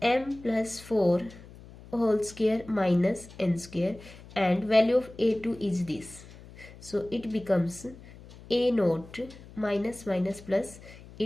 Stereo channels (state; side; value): noise; left; hum, 19 dB below the sound